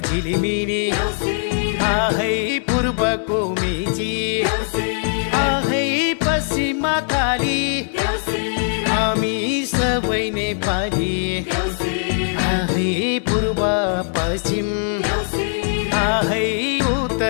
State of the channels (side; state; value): right; silent; digital silence